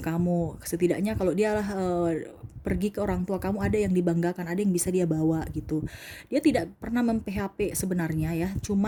Setidaknya kalau dia pergi ke orang tua kamu, ada yang dibanggakan, ada yang bisa dia bawa gitu. Dia tidak pernah mem-PHP sebenarnya ya,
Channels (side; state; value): both; identical; correlation 1.00